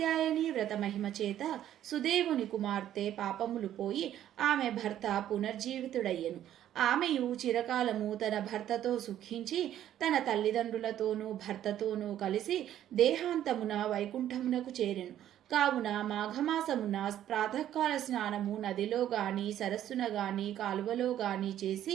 వ్రత మహిమ చేత సుదేవుని కుమార్తె పాపములు పోయి ఆమె భర్త పునర్జీవితుడయ్యెను. ఆమెయు చిరకాలము తన భర్తతో సుఖించి తన తల్లిదండ్రులతోనూ భర్తతోనూ కలిసి దేహాంతమున వైకుంఠమునకు చేరెను. కావున మాఘమాసమున ప్రాతకాల స్నానము నదిలో గాని సరస్సున గాని కాలువలో గాని చేసి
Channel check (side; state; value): left; quieter; 11.6 dB